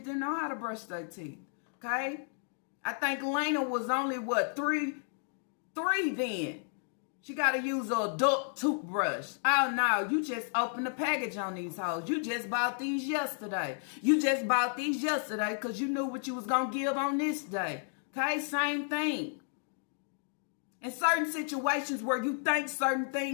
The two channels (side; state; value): right; silent; 56 dB below the other